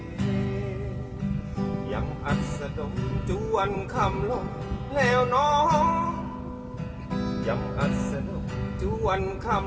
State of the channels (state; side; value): identical; both; correlation 1.00